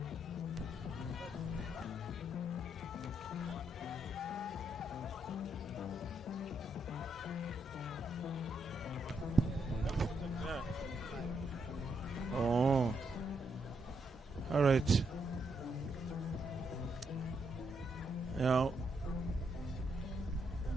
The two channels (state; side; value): normal; both; correlation 0.78